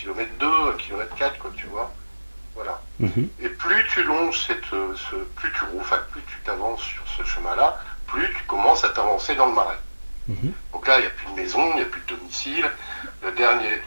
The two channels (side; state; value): both; inverted; correlation -1.00